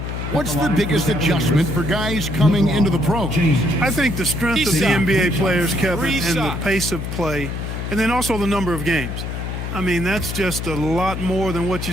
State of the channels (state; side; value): noise; left; hum, 5 dB below the sound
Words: What's the biggest adjustment for guys coming into the pros? I think the strength of the NBA players, Kevin, and the pace of play, and then also the number of games. I mean, that's just a lot more than what